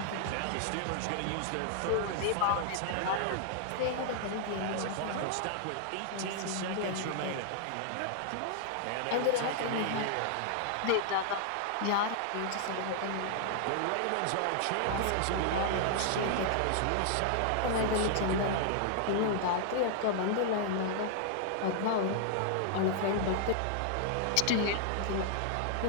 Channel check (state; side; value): different; both; correlation -0.01